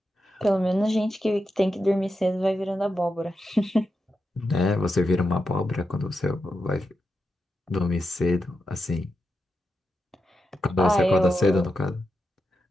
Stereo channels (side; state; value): both; normal; correlation 0.87